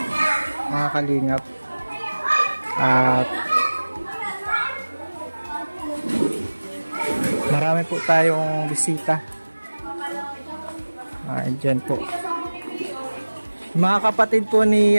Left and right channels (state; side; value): inverted; both; correlation -1.00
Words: Mga kalingap. At marami po tayong bisita. Dyan po. Mga kapatid po